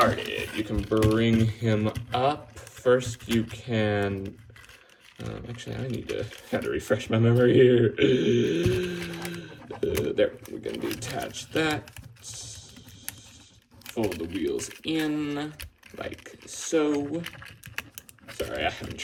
You can bring him up. First, you can... actually, I had to refresh my memory here. There, we're going to detach that. Fold the wheels in, like so. Sorry, I haven't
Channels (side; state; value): both; identical; correlation 1.00